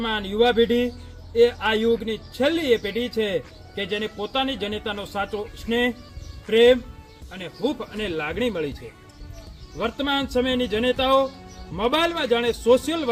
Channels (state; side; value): identical; both; correlation 1.00